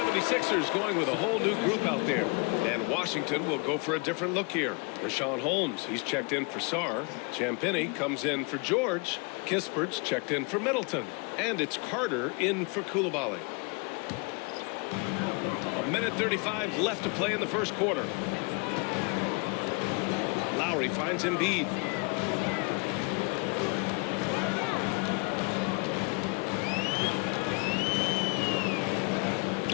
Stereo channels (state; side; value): quieter; right; 32.3 dB